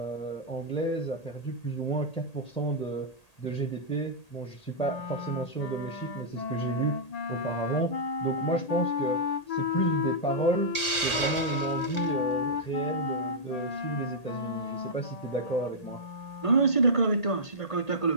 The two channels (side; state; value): right; late; 1.8 ms